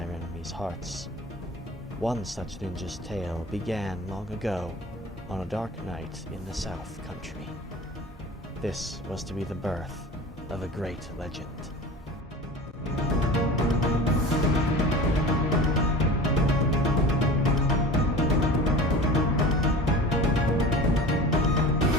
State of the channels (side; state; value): both; normal; correlation 0.37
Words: enemies' hearts. One such ninja's tale began long ago on a dark night in the South Country. This was to be the birth of a great legend.